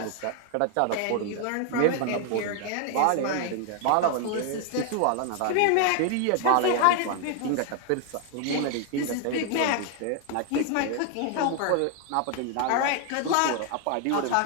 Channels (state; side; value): different; both; correlation 0.00